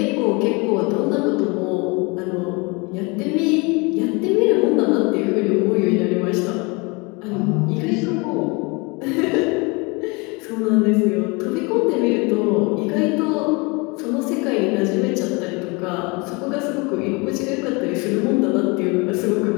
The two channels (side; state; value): right; quieter; 28.1 dB